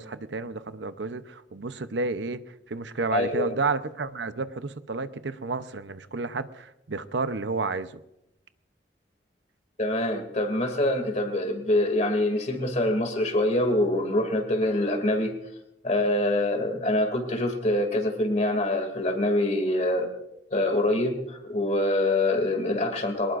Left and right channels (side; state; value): both; normal; correlation 0.34